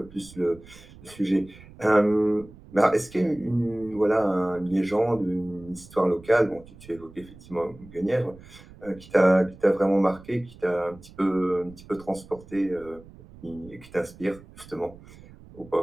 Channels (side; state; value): right; noise; rumble, 21 dB below the sound